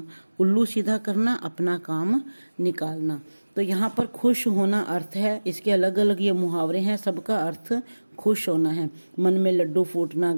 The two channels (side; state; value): both; inverted; correlation -1.00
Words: उल्लू सीधा करना, अपना काम निकालना। तो यहाँ पर खुश होना अर्थ है, इसके अलग अलग ये मुहावरे हैं, सबका अर्थ खुश होना है। मन में लड्डू फूटना,